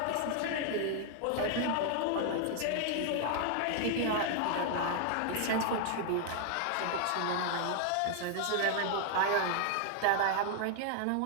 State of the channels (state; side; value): different; both; correlation 0.00